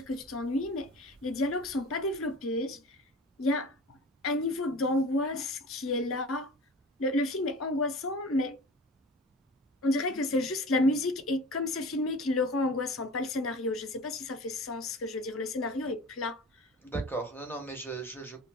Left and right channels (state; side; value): normal; both; correlation 0.38